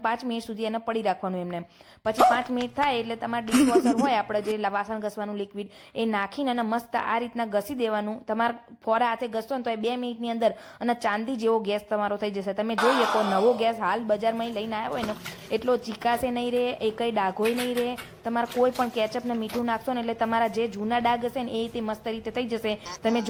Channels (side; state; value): both; identical; correlation 1.00